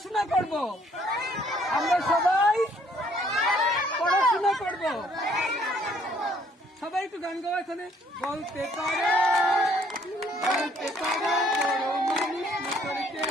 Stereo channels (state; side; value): normal; both; correlation 0.64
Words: করব। আমরা সবাই পড়াশোনা করব। সবাই একটু গান গাওয়া এখানে। বলতে পারো বলতে পারো বড় মানুষ মোটর